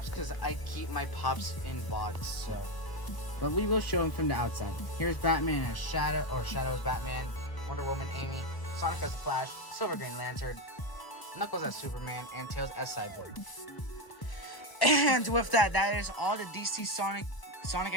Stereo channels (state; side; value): late; right; 1.0 ms